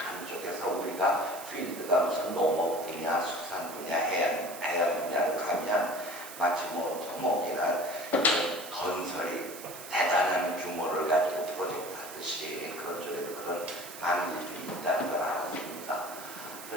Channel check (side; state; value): right; noise; hiss, 13 dB below the sound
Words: 쪽에서 우리가 필드가 무슨 농업 분야, 수산 분야, 해양 분야로 가면 마치 뭐 토목이나 건설이 대단한 규모를 가지고 프로젝트 하듯이 그런 쪽에도 그런 많은 일들이 있다는 걸 알았습니다.